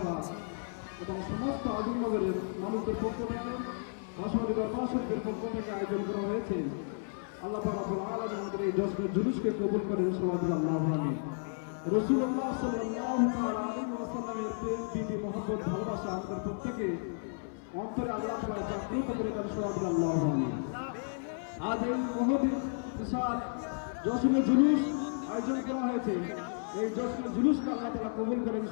এবং সমস্ত আজমনগরের মানুষদের পক্ষ থেকে, বাসন্তী দরবার শরীফের পক্ষ থেকে আয়োজন করা হয়েছে। আল্লাহ পাক রব্বুল আলামিন আমাদের এই জশ্নের জুলুসকে কবুল করেন, সবাই বলি আল্লাহুম্মা আমিন। রাসূলুল্লাহ সাল্লাল্লাহু আলাইহি ওয়াসাল্লামের প্রেম, প্রীতি, মহব্বত, ভালোবাসা আমাদের প্রত্যেকে অন্তরে আল্লাহ তাআলা জাগ্রত করে দেন, সবাই বলি আল্লাহুম্মা আমিন। আজ এই মহৎ বিশাল জশ্নে জুলুস আয়োজন করা হয়েছে। এই জশ্নে জুলুসকে আল্লাহ তাআলা কবুল করেন,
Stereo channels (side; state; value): right; silent; 56 dB below the other